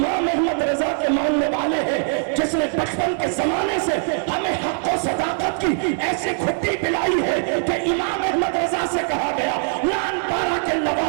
احمد رضا کے ماننے والے ہیں جس نے بچپن کے زمانے سے ہمیں حق و صداقت کی ایسی کھٹی پلائی ہے کہ امام احمد رضا سے کہا گیا لان پارا کے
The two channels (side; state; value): left; silent; 65 dB below the other